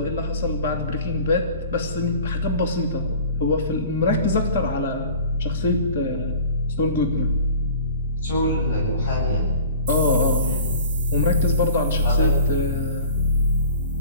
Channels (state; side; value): inverted; both; correlation -0.43